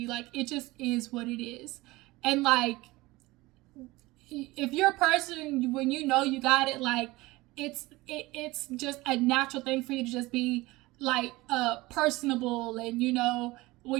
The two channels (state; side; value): quieter; left; 20.6 dB